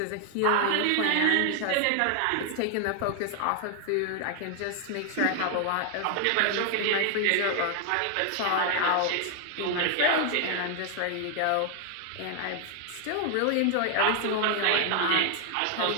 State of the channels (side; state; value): both; different; correlation 0.00